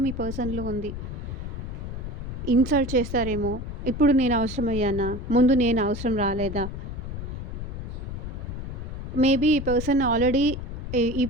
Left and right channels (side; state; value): left; noise; rumble, 6 dB below the sound